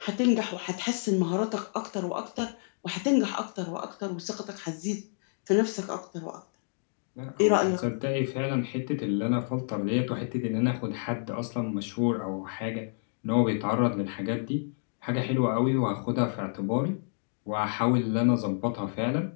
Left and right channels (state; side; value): silent; right; digital silence